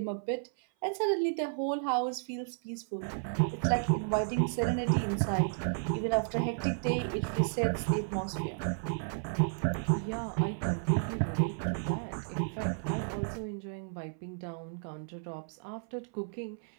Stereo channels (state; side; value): silent; left; 56 dB below the other